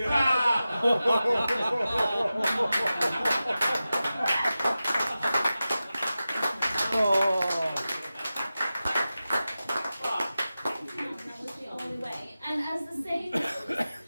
That was the only way. And as the saying goes,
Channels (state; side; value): inverted; both; correlation -0.94